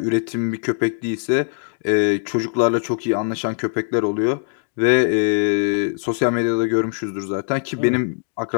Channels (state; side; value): silent; right; digital silence